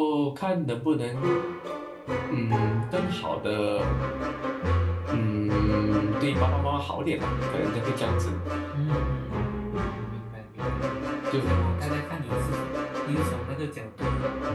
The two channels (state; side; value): identical; both; correlation 1.00